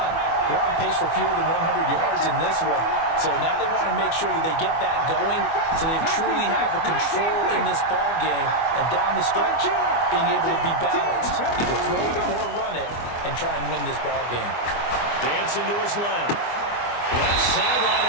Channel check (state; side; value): late; right; 24 ms